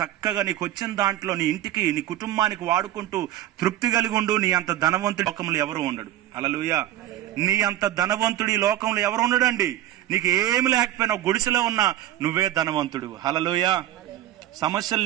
నీకు వచ్చిన దాంట్లో నీ ఇంటికి, నీ కుటుంబానికి వాడుకుంటూ తృప్తి కలిగి ఉండు. నీ అంత ధనవంతుడి లోకంలో ఎవరు ఉండడు. హల్లెలూయా. నీ అంత ధనవంతుడి లోకంలో ఎవరు ఉండడండి. నీకు ఏమి లేకపోయినా గుడిసెలో ఉన్నా నువ్వే ధనవంతుడు. హల్లెలూయా. సమస్యలు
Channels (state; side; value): quieter; left; 13.5 dB